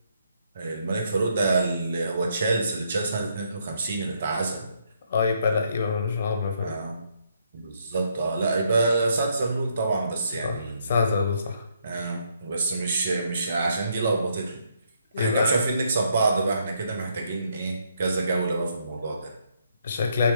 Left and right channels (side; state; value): both; inverted; correlation -0.73